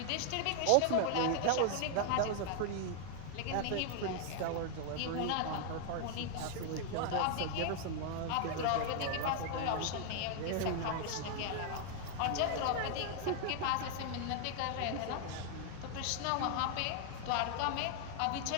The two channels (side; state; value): both; different; correlation 0.00